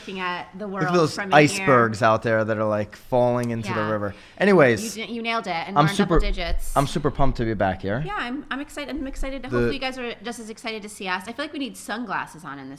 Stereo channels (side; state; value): both; identical; correlation 1.00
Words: at the world. Look at those from icebergs out there that are like falling into the river. Anyways, you nailed it, and we're in double digits. I'm super pumped to be back here. Yeah, I'm excited. I'm excited. Hopefully, you guys are just as excited to see us. I feel like we need sunglasses on in